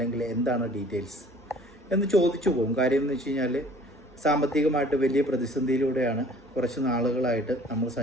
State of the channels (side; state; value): both; normal; correlation 0.51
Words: എന്താണ് ഡീറ്റെയിൽസ് എന്ന് ചോദിച്ചു പോകും. കാര്യം എന്ന് വെച്ച് കഴിഞ്ഞാൽ സാമ്പത്തികമായിട്ട് വലിയ പ്രതിസന്ധിയിലൂടെയാണ് കുറച്ച് നാളുകളായിട്ട് നമ്മൾ